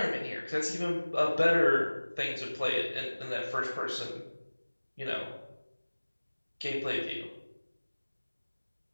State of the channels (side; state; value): both; inverted; correlation -1.00